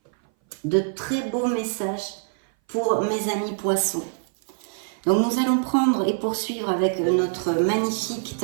De très beaux messages pour mes amis poissons. Donc nous allons prendre et poursuivre avec notre magnifique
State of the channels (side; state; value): left; silent; 59 dB below the other